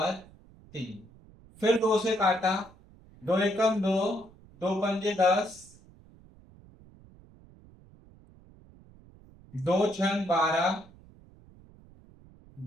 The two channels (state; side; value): noise; right; rumble, 25 dB below the sound